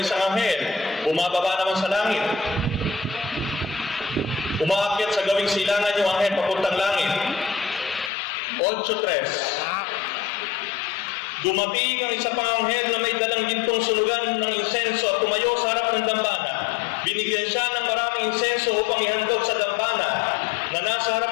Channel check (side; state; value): right; drops out; at 8.1 s